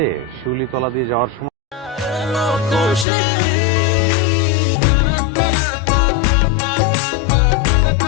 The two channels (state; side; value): drops out; right; at 3.1 s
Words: শিউলি তলা দিয়ে যাওয়ার সময়